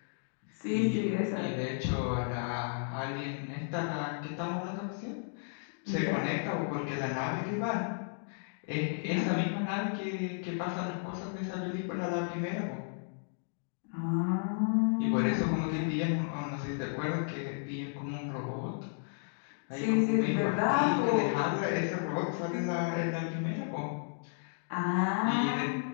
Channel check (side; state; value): right; silent; digital silence